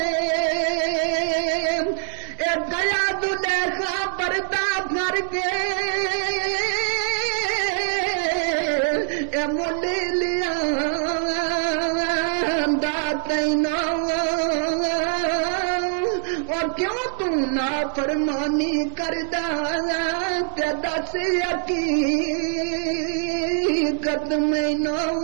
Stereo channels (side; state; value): left; silent; 63 dB below the other